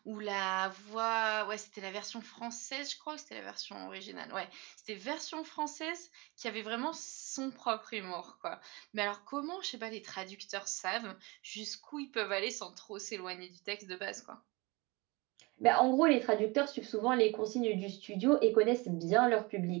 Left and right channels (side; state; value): left; quieter; 25.6 dB